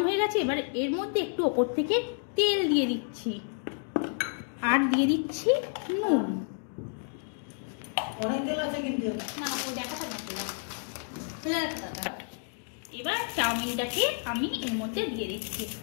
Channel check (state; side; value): silent; right; 58 dB below the other